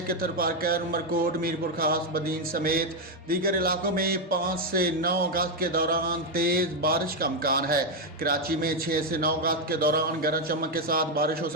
कि तरफारकर, उमरकोट, मीरपुर खास, बदीन समेत दीगर इलाकों में 5 से 9 अगस्त के दौरान तेज़ बारिश का इम्कान है। कराची में 6 से 9 अगस्त के दौरान गरज चमक के साथ बारिश हो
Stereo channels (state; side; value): normal; both; correlation 0.04